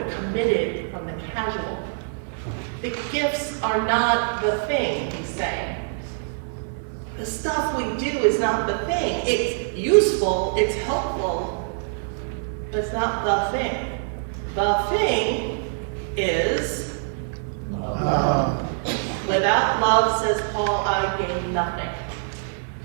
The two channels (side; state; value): left; silent; 62 dB below the other